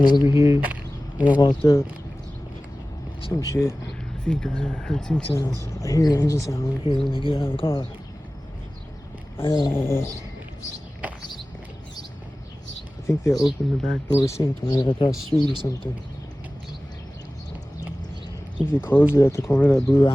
over here when I walked up. Some shit. I think I heard sync sounds. I hear an engine sound over here when they get out of the car. I think they opened the back door sink when I got across the street or something. I think they closed it at the corner of that blue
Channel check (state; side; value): normal; both; correlation 0.97